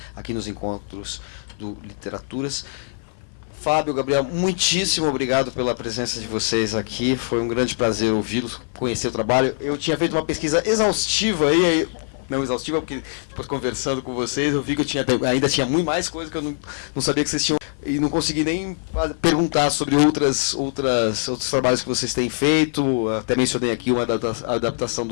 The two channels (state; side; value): silent; right; 55 dB below the other